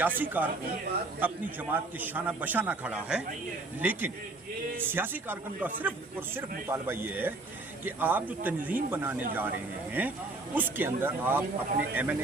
کارکن اپنی جماعت کے شانہ بشانہ کھڑا ہے. لیکن سیاسی کارکن کا صرف اور صرف مطالبہ یہ ہے کہ آپ جو تنظیم بنانے جا رہے ہیں اس کے اندر آپ اپنے M N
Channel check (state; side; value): quieter; left; 3.1 dB